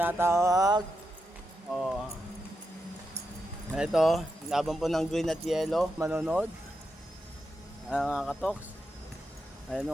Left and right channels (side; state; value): both; normal; correlation 0.86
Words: Oh. Ito, laban po ng green at yellow. Manonood. Mga katoks.